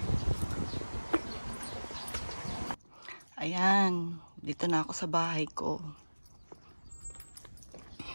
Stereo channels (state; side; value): inverted; both; correlation -1.00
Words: Ayan, dito na ako sa bahay ko.